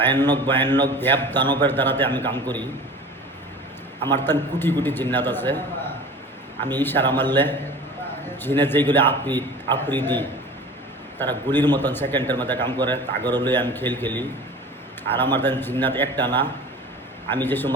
দেব দানবের দ্বারাতে আমি কাম করি। আমার তান কোটি কোটি জিন্নাত আছে। আমি ইশারা মারলে জিনে যেগুলি আফ্রিদি তারা গুলির মতন সেকেন্ডের মধ্যে কাম করে, তাগর লই আমি খেলি। আর আমার তান জিন্নাত একটা না, আমি যে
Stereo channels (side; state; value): both; normal; correlation 0.39